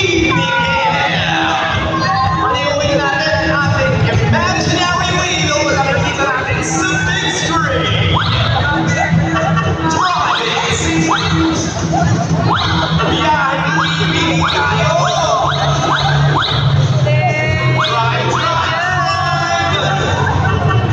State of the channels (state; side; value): identical; both; correlation 1.00